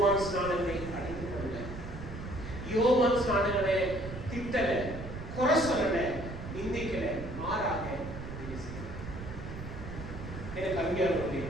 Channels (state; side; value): noise; right; rumble, 9 dB below the sound